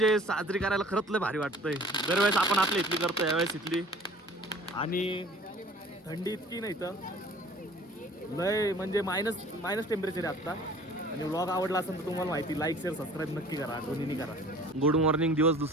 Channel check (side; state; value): both; normal; correlation 0.48